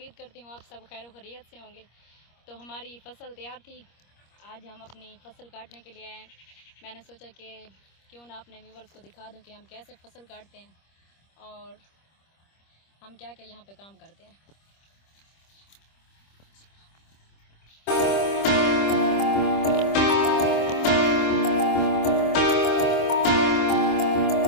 करती हूँ आप सब खैर खैरियत से होंगे। तो हमारी फ़सल तैयार थी, आज हम अपनी फ़सल काटने के लिए आए हैं। मैंने सोचा कि क्यों ना अपने व्यूवर्स को दिखा दूँ कि हम कैसे फ़सल काटते हैं और हम क्या क्या यहाँ पे काम करते हैं।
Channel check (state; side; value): late; right; 25 ms